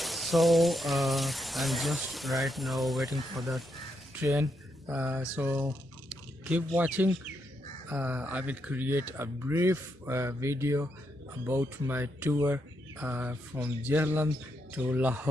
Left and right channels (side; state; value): both; normal; correlation 0.80